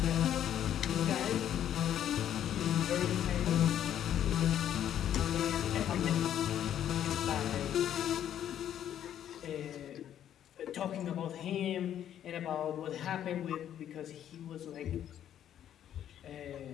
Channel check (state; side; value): quieter; right; 10.5 dB